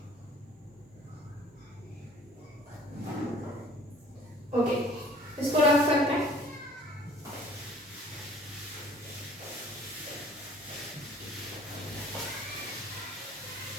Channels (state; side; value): normal; both; correlation 0.52